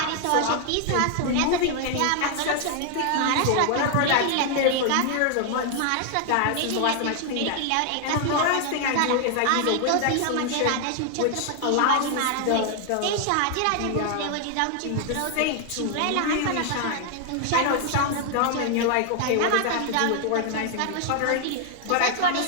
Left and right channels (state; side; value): different; both; correlation 0.00